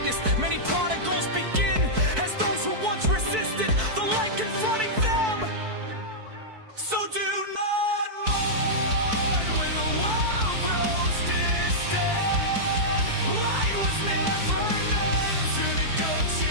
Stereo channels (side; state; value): left; late; 4.6 ms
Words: many prodigals begin as those who once resisted the light confronting them. So do not mourn when the world grows distant. Light was never meant to